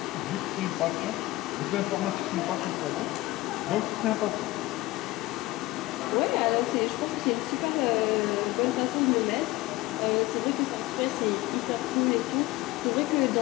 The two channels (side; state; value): right; quieter; 19.0 dB